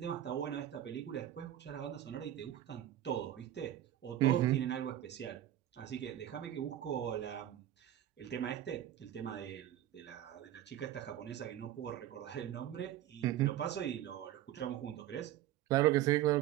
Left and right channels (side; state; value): left; quieter; 12.6 dB